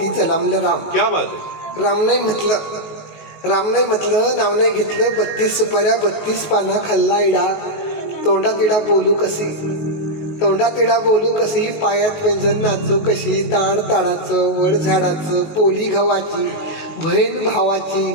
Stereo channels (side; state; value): right; late; 19 ms